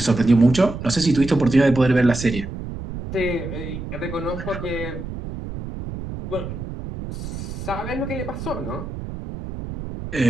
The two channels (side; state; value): right; noise; rumble, 8 dB below the sound